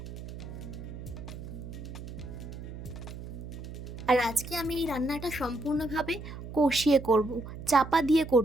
আর আজকে আমি এই রান্নাটা সম্পূর্ণভাবে কষিয়ে করব, চাপা দিয়ে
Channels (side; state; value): right; noise; hum, 10 dB below the sound